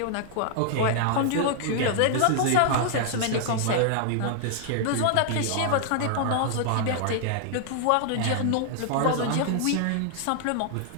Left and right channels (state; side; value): different; both; correlation 0.00